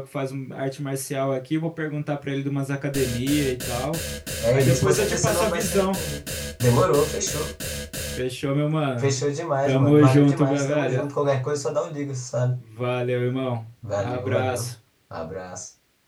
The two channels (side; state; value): both; identical; correlation 1.00